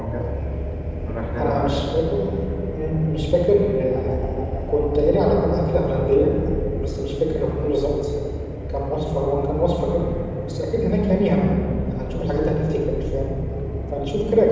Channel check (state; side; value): identical; both; correlation 1.00